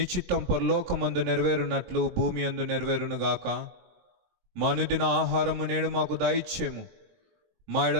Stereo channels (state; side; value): late; left; 21 ms